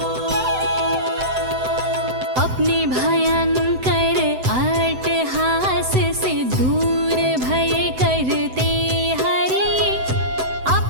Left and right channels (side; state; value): left; late; 7.9 ms